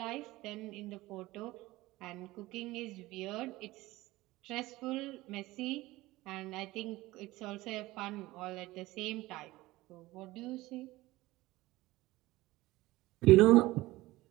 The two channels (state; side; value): quieter; left; 18.8 dB